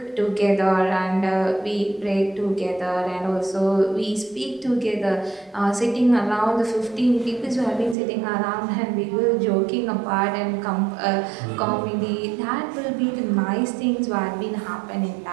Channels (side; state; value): left; drops out; at 8.0 s